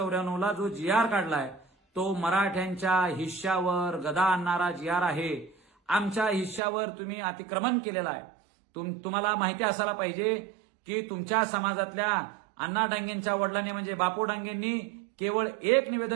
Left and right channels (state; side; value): drops out; left; at 6.6 s